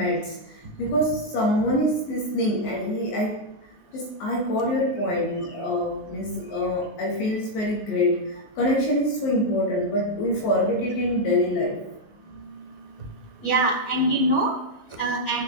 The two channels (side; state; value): right; late; 19 ms